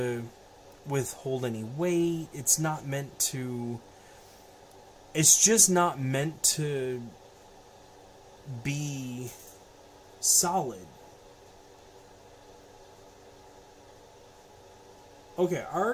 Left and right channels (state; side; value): identical; both; correlation 1.00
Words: withhold any weight. It's not meant to... It's just not meant to be solid. Okay, I